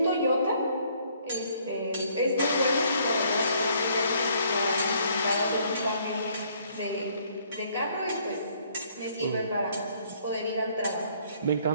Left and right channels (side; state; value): both; inverted; correlation -0.63